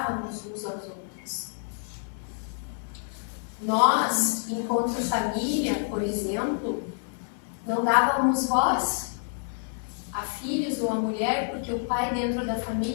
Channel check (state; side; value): silent; right; 59 dB below the other